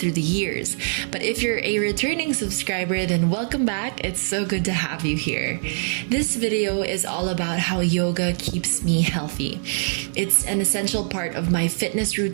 the years. But if you're a returning subscriber, then welcome back. It's so good to have you here. This video is all about how yoga keeps me healthy. It's an essential part of my fitness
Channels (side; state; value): left; silent; digital silence